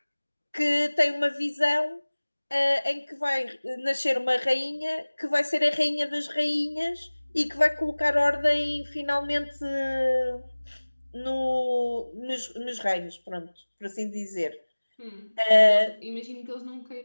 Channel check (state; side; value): inverted; both; correlation -1.00